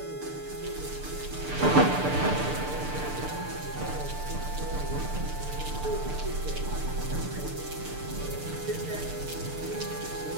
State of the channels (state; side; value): late; left; 6.7 ms